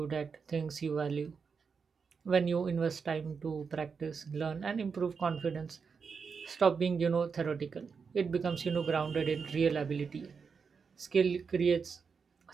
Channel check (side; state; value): left; quieter; 5.6 dB